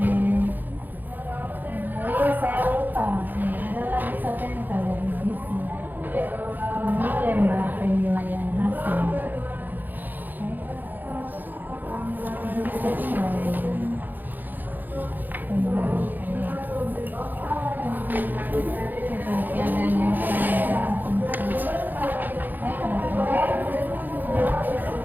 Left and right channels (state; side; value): late; left; 0.087 ms